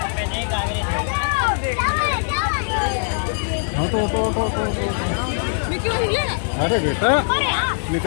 हाँ तो अरे बेटा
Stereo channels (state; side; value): silent; right; 60 dB below the other